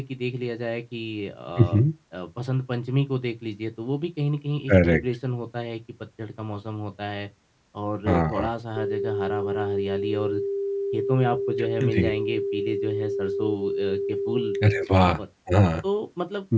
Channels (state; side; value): identical; both; correlation 1.00